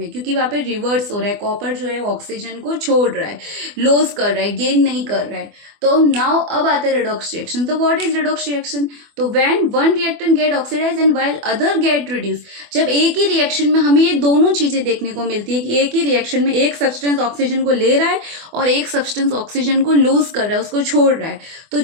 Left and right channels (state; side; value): late; left; 24 ms